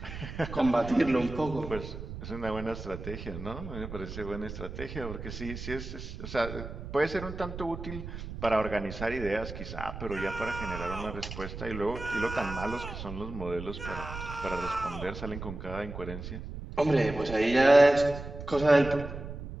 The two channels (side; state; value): right; noise; rumble, 9 dB below the sound